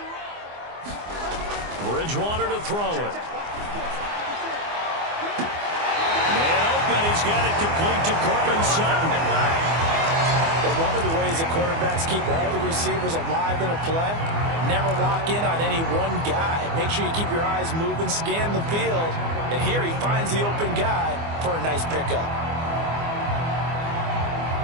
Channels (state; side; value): late; left; 24 ms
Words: Bridgewater to throw it. Man open, he's got it complete to Courtland Sutton. But one of the ways the quarterbacks keep all the receivers alive in a play, never lock in on any one guy. Make sure you keep your eyes moving, scan the field, and here he finds the open guy for a nice pickup.